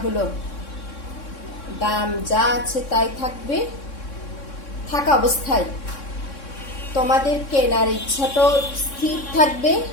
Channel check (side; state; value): right; late; 3.6 ms